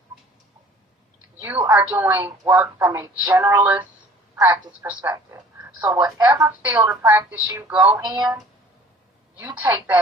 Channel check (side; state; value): both; normal; correlation 0.50